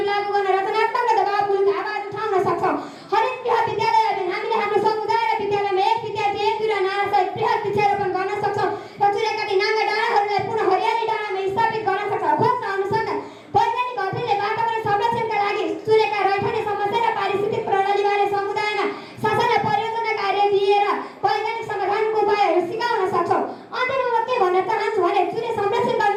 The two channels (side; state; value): both; identical; correlation 1.00